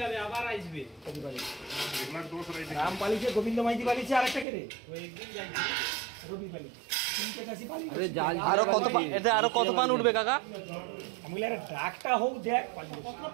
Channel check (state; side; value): drops out; left; at 4.5 s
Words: আবার আসবে রাম পালিছে গোবিন্দ মাইতি পালিছে আরেকটা কে রে ওই একদিন যাইছে রবি পালি তিনটে কাছে পালি আরো কত এটা আরো কত পান উঠবে কাকা আমি বলি আরে ডাকটা হোক দেখ পালি কত